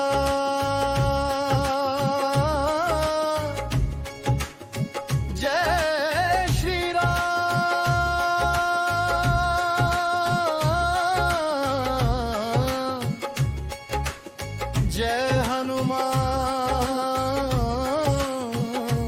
जय श्री राम, जय हनुमान,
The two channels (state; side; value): identical; both; correlation 1.00